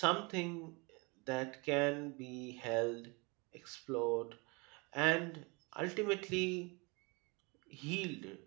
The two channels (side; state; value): left; quieter; 28.9 dB